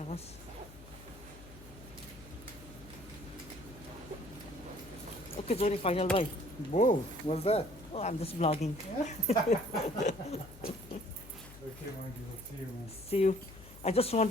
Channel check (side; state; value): left; noise; hum, 18 dB below the sound